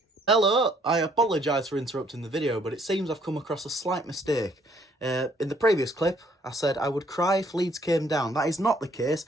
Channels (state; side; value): normal; both; correlation 0.64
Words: Hello, I apologise for interrupting the video, but it seems I've come across a slight mistake. In the previous clip, I said I would cry if Leeds came down. That is not the case.